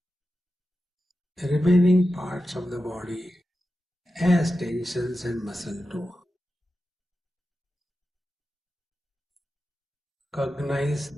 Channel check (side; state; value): both; normal; correlation 0.92